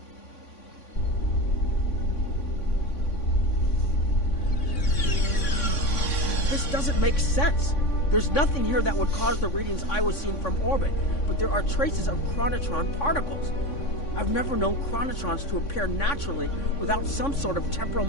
This doesn't make sense. There's nothing here that would cause the readings I was seeing from orbit, but there are traces of chronotron particles. I've never known chronotrons to appear naturally without some sort of temporal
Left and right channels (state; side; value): late; right; 3.5 ms